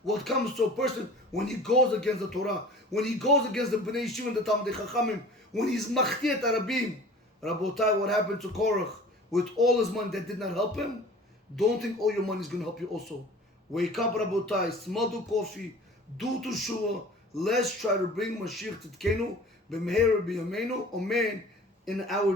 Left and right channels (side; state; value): both; normal; correlation 0.43